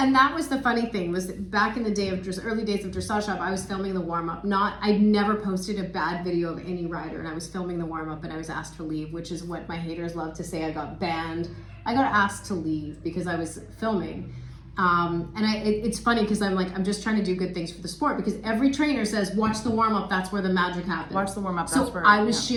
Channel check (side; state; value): both; identical; correlation 1.00